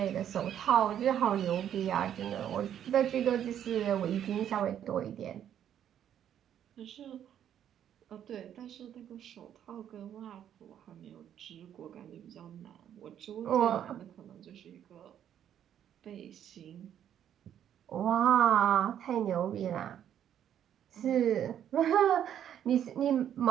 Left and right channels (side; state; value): left; quieter; 10.0 dB